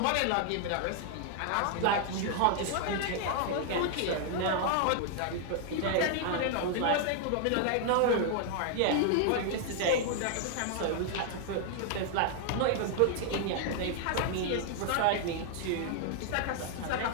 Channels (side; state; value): both; different; correlation 0.00